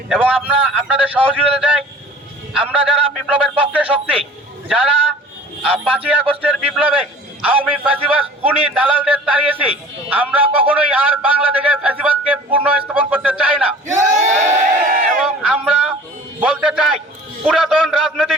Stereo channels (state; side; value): normal; both; correlation 0.46